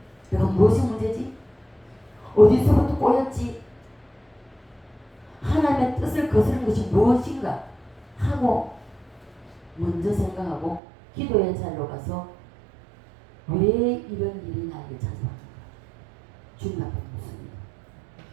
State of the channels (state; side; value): drops out; left; at 10.8 s